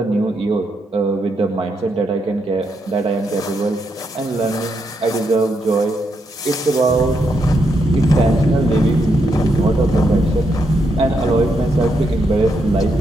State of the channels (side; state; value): both; normal; correlation 0.80